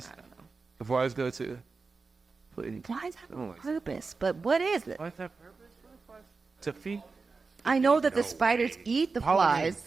don't know. The flies go too. Please. Flies have Oh a my God. purpose, but what is it? Flies have purpose? To feed. I know that the spiders eat the flies.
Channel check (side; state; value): left; quieter; 4.3 dB